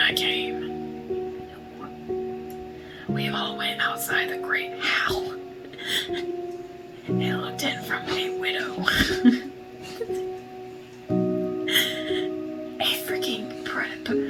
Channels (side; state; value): both; identical; correlation 1.00